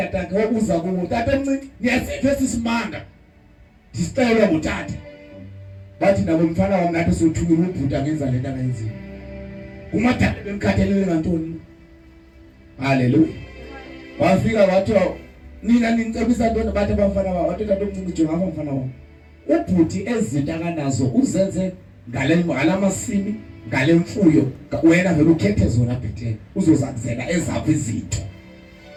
akhe wabuza kuwo tata omncinci niyasiphe sisimanga. Disicela ngutata. Bathi nabo mfana wami nathi sothukile ubhuta ngenza lento angayenzile. Umadala bemkhathalele ngantoni? Hallelujah. Wafika wathi nina ninicebisa ntoni bathi abafana babo wathi tata omncinci jonga apha mfana wami. Ubhuti ezinto akanazo uzenze ngalamasimi ngale mfuyo wena vele ukhethe zona bhethe uzozakuzela ezaphi izinto.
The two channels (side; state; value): both; identical; correlation 1.00